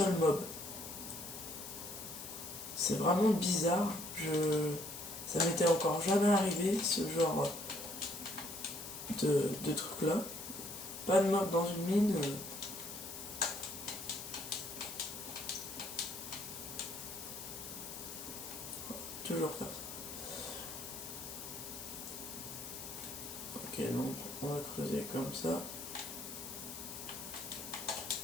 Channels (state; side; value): noise; left; hiss, 9 dB below the sound